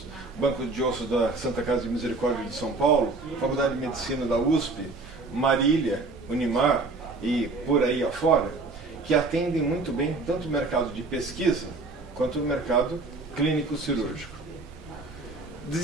Banco de Ossos da Santa Casa de Misericórdia de São Paulo, Faculdade de Medicina da USP, Marília, Unimar e por aí afora, que atendem muito bem tanto o mercado de pesquisa quanto o mercado clínico-cirúrgico.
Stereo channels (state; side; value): quieter; left; 3.6 dB